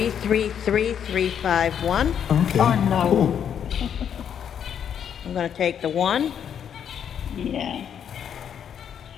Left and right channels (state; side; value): quieter; right; 8.5 dB